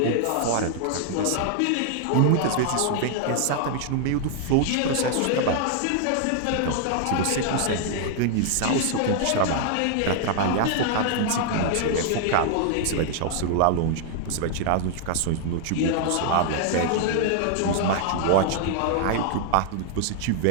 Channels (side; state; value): both; different; correlation 0.00